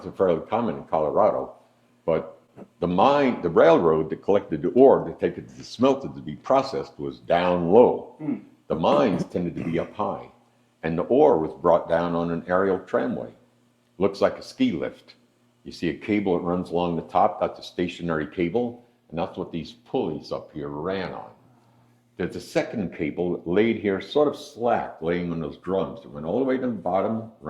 they're fairly common in Colorado, but the railroad that collected the ore to take it to the smelter to be processed was down low. The mines tended to be up high, and the ore was brought down on an aerial tramway. Looks like a ski lift. You see a cable that runs along the top, that's a stationary cable, and that's what these pulleys up here ran on. There's a second cable laid here, sort of slack, laying on those drums. It went all the way to the bottom,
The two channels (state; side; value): identical; both; correlation 1.00